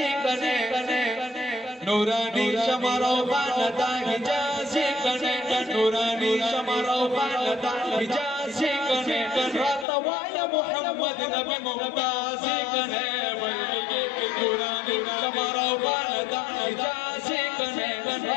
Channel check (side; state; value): right; drops out; at 9.9 s